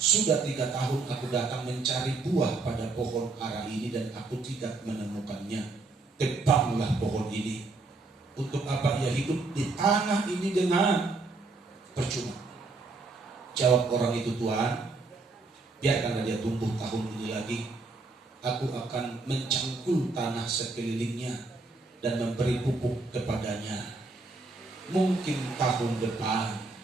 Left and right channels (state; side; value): quieter; left; 3.7 dB